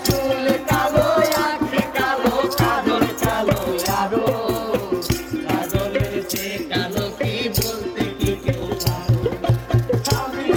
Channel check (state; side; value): identical; both; correlation 1.00